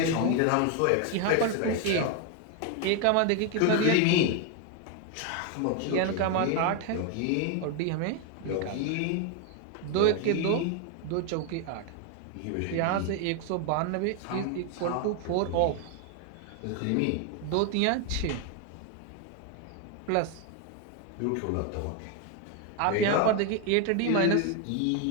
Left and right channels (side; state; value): both; different; correlation 0.01